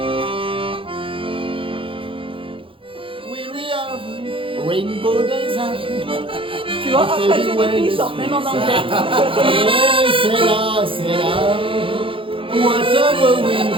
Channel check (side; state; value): left; late; 0.25 ms